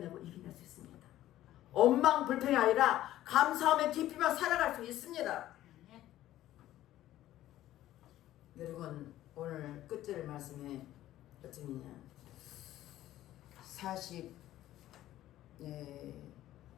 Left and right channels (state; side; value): quieter; right; 13.9 dB